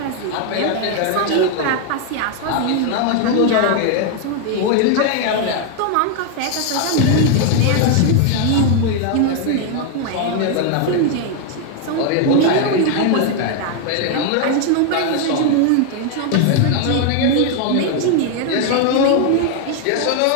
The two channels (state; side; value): different; both; correlation 0.00